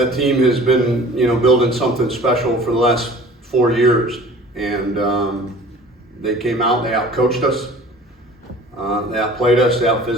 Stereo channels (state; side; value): normal; both; correlation 0.46